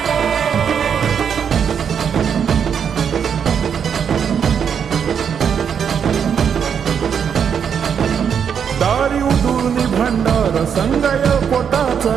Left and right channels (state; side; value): quieter; left; 7.5 dB